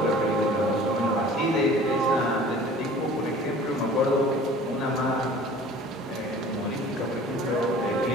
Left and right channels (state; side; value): normal; both; correlation 0.46